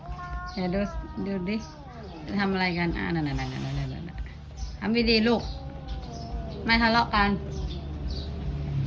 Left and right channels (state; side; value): identical; both; correlation 1.00